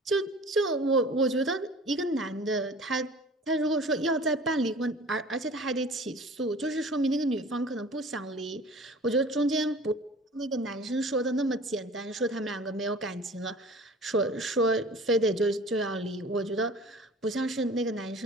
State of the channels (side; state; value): both; normal; correlation 0.44